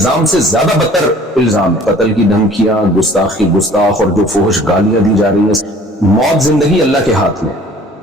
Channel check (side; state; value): both; normal; correlation 0.51